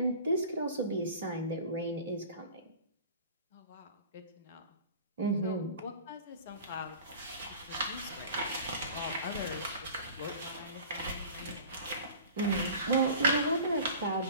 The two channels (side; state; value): both; inverted; correlation -0.41